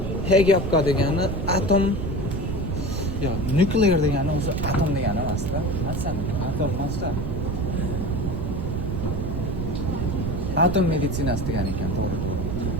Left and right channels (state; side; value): noise; right; rumble, 3 dB below the sound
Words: Hegapka degani atom yo, nuklear degani o'zi atom degani emas-da. Masalan, atom emas-da. Atom meditsinasi degan ekan, to'g'ri.